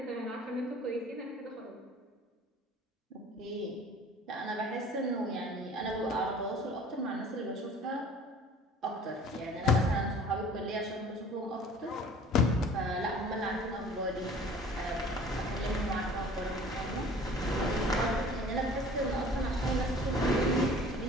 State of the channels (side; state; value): both; normal; correlation 0.48